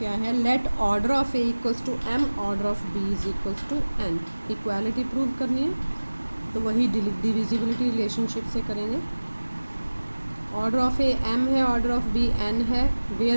है, let order of a equals to m order of b is equals to n. Equality prove करनी है तो वही divisibility relationship से करेंगे. Order of a m है, ऑर्डर ऑफ बी एन है,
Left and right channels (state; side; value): inverted; both; correlation -1.00